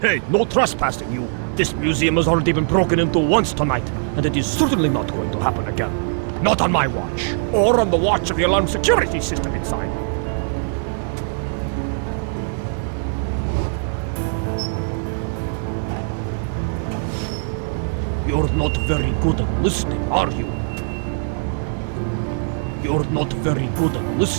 no trespassing, you! This museum has already been broken into once tonight, and it is certainly not going to happen again. Not on my watch, or on the watch of the alarm security system inside. You're not very good at listening, are you? You're not very good at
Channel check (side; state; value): left; silent; digital silence